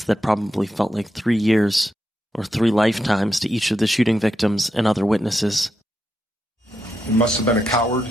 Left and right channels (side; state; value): both; normal; correlation 0.84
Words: that probably felt like 3 years, or 3 lifetimes to each of the shooting victims and other witnesses. He must have been a coward,